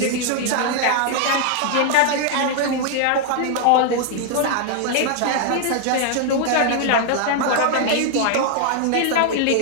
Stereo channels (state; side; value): different; both; correlation 0.00